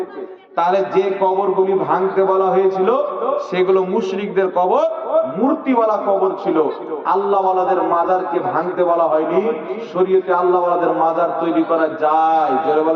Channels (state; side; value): identical; both; correlation 1.00